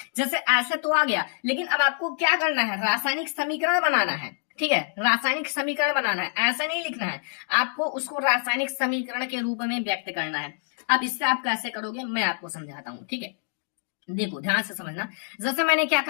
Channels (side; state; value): right; silent; 61 dB below the other